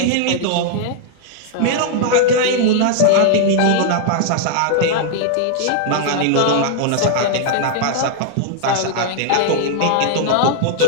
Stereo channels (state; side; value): different; both; correlation -0.01